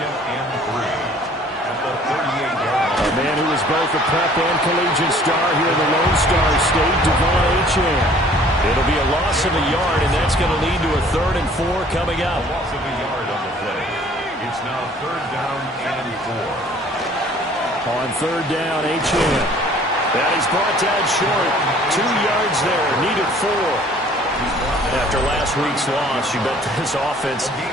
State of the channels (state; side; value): normal; both; correlation 0.54